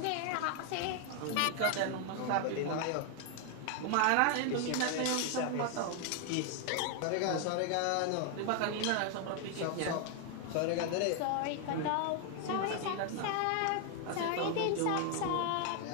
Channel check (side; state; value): both; different; correlation 0.00